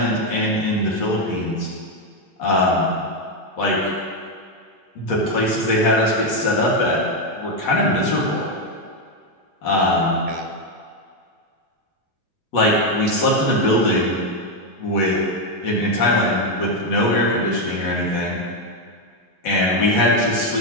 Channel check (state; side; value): normal; both; correlation 0.05